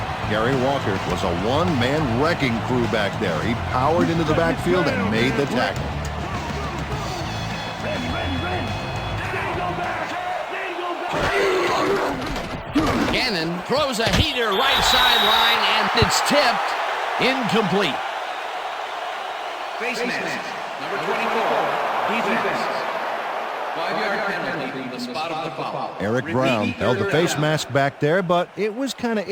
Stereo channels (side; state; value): both; identical; correlation 1.00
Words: Gary Walker was a one-man wrecking crew back there. He powered into the backfield and made the tackle. Gannon throws a heater right sideline, and it's tipped. Incomplete. Face mask, number 24, defense. 5-yard penalty, the spot of the foul. Eric Brown held the face mask back there, but it was kind of